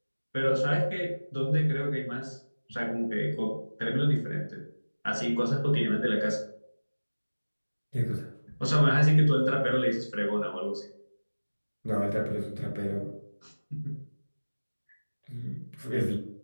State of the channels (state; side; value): inverted; both; correlation -1.00